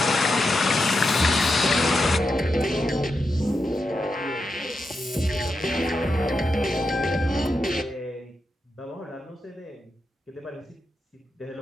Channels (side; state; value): both; normal; correlation 0.86